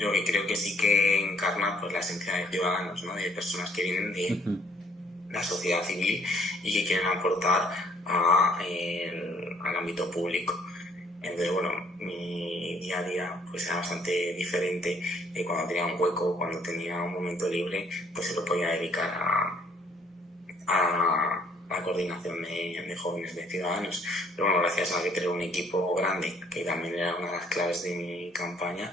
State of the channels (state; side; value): normal; both; correlation 0.61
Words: que creo que sí que encarna pues la esencia de ciudadanos, ¿no? De personas que vienen de la sociedad civil y que quieren aportar al ámbito público. Entonces, bueno, mi día a día pues era bastante diferente. Cuando tenía un hueco, cuando tenía un momento libre, pues se lo podía dedicar a la coordinación de jóvenes, de ciudadanos. Pero bueno, gracias a que tengo un equipo grande, que también era una de las claves de mi campaña,